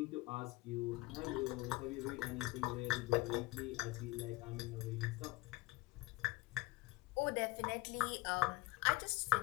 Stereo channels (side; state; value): right; quieter; 20.3 dB